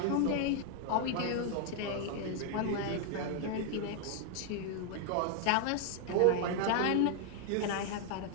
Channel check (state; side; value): different; both; correlation 0.00